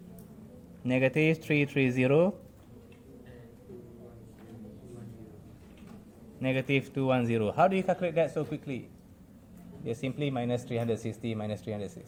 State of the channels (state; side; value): identical; both; correlation 1.00